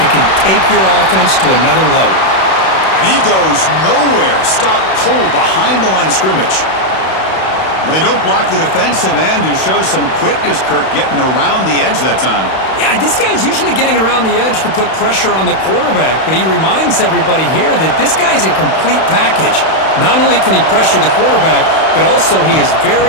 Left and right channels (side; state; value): right; late; 31 ms